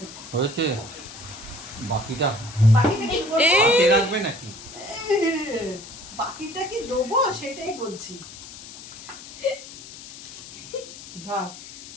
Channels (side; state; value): left; noise; hiss, 15 dB below the sound